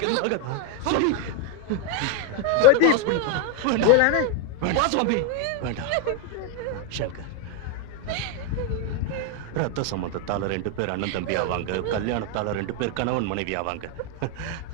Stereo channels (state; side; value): different; both; correlation 0.01